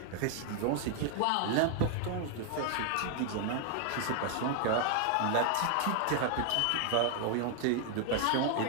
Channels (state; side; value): different; both; correlation 0.00